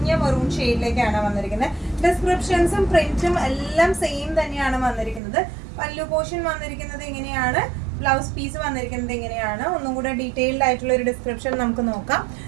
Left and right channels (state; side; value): drops out; left; at 5.2 s